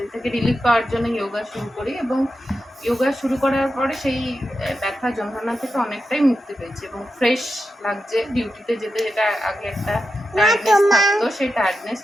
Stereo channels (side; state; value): both; normal; correlation 0.89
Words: থেকে রিলিফ পাওয়ার জন্য যোগা শুরু করি এবং যোগা শুরু করার পরে সেই ব্যথা যন্ত্রণা থেকে অনেকটাই মুক্তি পেয়েছি এবং ফ্রেশ লাগছে। ডিউটিতে যেতে যেটা আগে একটা টায়ার্ডনেস থাকতো, সেই টায়ার্ডনেস